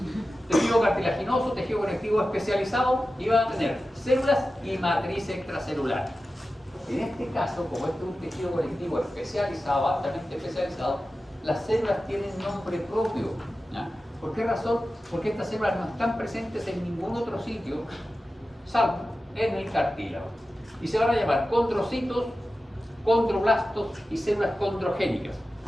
Tejido cartilaginoso, tejido conectivo especializado, y van a tener células y matriz extracelular. En este caso, como este es un tejido conectivo especializado, altamente especializado, las células tienen nombre propio. ¿Ya? ¿Por qué razón? Porque estas células no están presentes en ningún otro sitio, salvo en el cartílago. Y se van a llamar condrocitos, condroblastos y células condrogénicas.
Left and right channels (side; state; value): both; normal; correlation 0.94